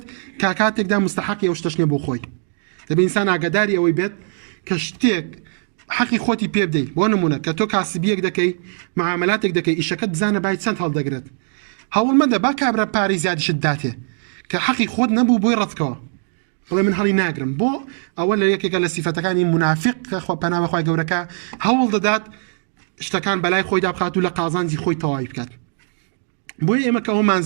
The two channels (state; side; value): silent; left; digital silence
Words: کاتێکدا مستحقی ئەو شتەش نیە بۆ خۆی دەبێت ئینسان ئاگاداری ئەوەی بێت کە شتێک حەقی خۆتی پێ بدەیت بۆ نمونە کە تۆ کاسبیەک دەکەی معاملاتێک دەکەی ئیشەکەت بزانە باید چەند هەڵدەگرێت هەوڵ مەدە با کابرا پارەی زیادیشت داتێ کە حەقی خۆت نەبوو بۆی ڕەتکەوە بڵێ من هەڵی ناگرم بۆ ئەوە لە یەکێکە لە سیفەتەکانی منافق کە پەنا بەخوای گەورەکە هەوڵ دەدات شتەکان بەلای خۆی دابخات و لە قازانجی خۆی تەواوی بکات بۆیە ئێمە کە